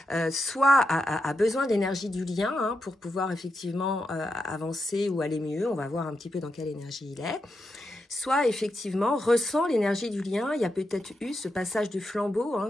soit a besoin d'énergie du lien hein, pour pouvoir effectivement avancer ou aller mieux, on va voir un petit peu dans quelle énergie il est, soit effectivement ressent l'énergie du lien. Il y a peut-être eu ce passage du flambeau,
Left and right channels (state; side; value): normal; both; correlation 0.86